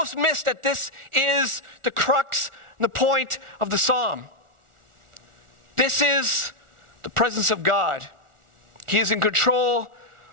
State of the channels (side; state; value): left; late; 1.4 ms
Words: miss that this is the crux and the point of the psalm. This is the presence of God. He is in control